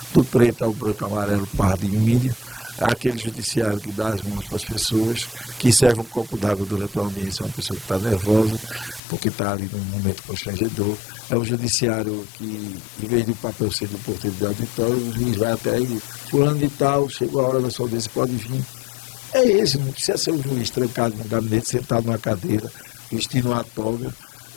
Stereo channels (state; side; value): drops out; right; at 9.0 s